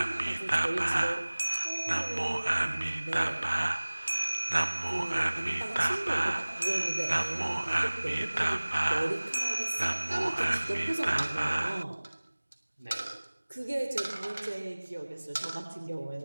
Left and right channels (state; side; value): inverted; both; correlation -1.00